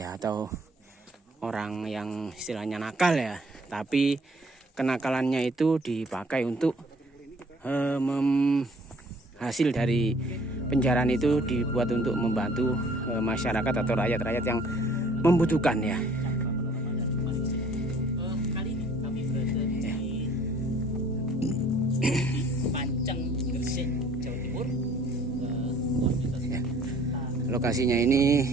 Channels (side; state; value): both; normal; correlation 0.56